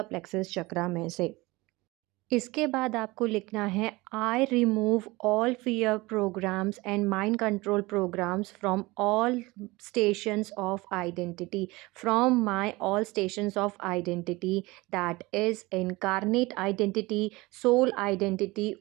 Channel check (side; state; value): left; quieter; 21.9 dB